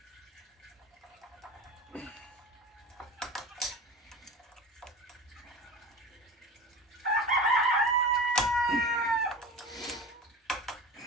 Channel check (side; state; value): both; normal; correlation 0.32